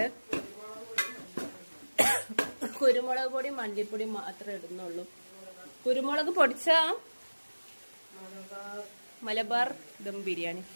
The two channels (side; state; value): both; inverted; correlation -1.00